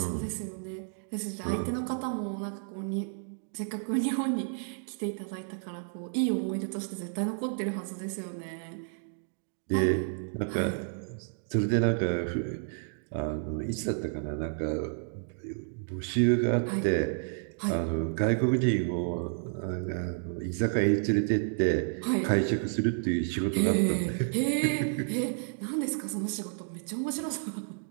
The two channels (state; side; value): silent; left; digital silence